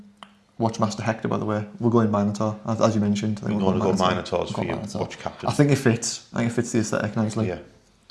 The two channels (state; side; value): identical; both; correlation 1.00